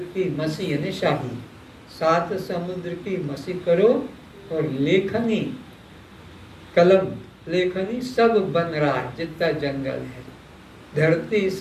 की मसी यानी शाही, 7 समुद्र की मसी करो, और लेखनी, कलम, लेखनी सब बन रहा है जितना जंगल है। धरती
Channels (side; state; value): both; identical; correlation 1.00